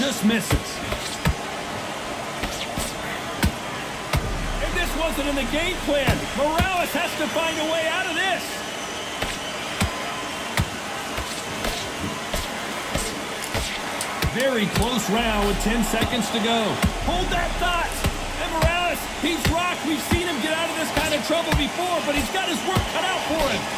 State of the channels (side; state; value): both; identical; correlation 1.00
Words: misses. And this wasn't in the game plan. Morales has to find a way out of this. Very close round with 10 seconds to go. Hold that thought. And Morales, he's rocked. We've seen him get out of this kind of trouble before, but he's got his work cut out for him.